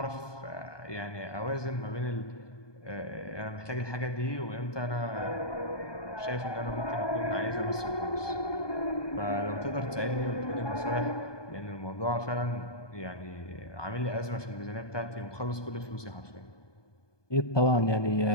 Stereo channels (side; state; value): right; late; 1.2 ms